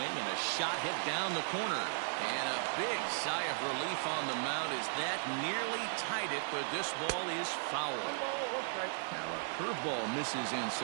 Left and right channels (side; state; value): left; silent; digital silence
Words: and a shot hit down the corner. And a big sigh of relief on the mound as that nearly tied it, but this ball is foul. 1 ball, 1 strike. Now a curveball misses